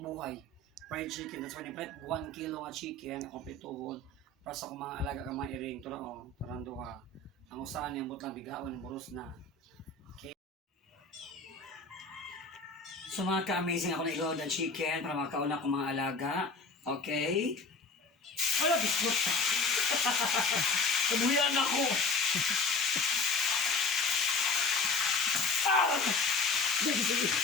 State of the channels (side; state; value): right; quieter; 3.7 dB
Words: buhay. Fried chicken, that's why ni-prep 1 kilo nga chicken, kompletuhon, para sa akong mga alaga ka mga iring. Ito na o, parang duha. Ang usahan niyang butang bigaon, yung buros na. Okay. So mga ka-amazing, ako na-igawad ang chicken para makauna akong mga alaga. Okay? Wala, biskot. Kabuyan ako. Ah! Sige, sige.